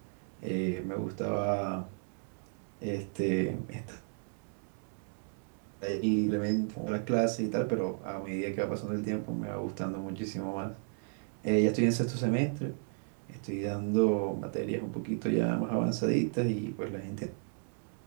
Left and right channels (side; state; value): left; silent; 55 dB below the other